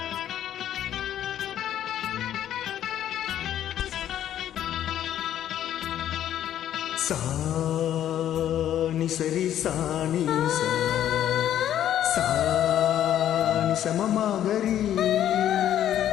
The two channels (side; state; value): right; quieter; 11.1 dB